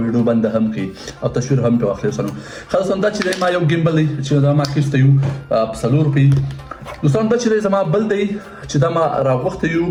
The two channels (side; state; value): both; identical; correlation 1.00